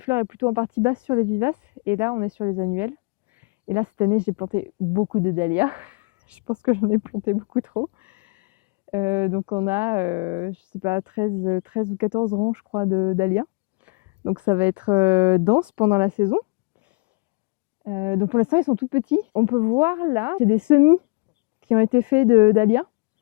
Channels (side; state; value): right; quieter; 31.1 dB